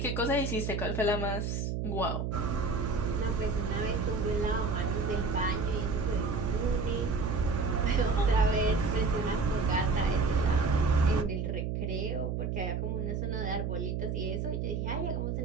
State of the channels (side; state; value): right; noise; hum, 1 dB below the sound